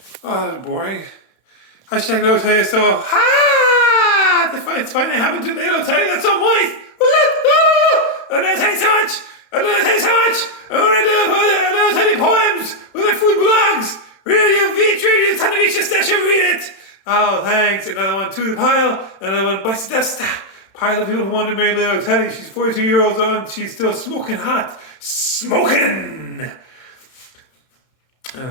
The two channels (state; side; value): late; right; 31 ms